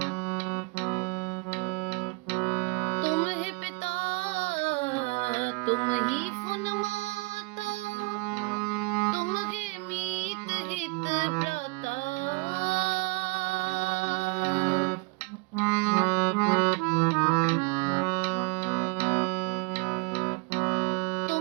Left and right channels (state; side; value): quieter; left; 28.9 dB